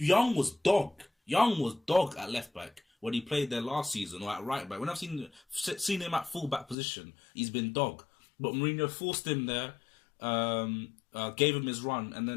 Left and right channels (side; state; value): right; drops out; at 6.8 s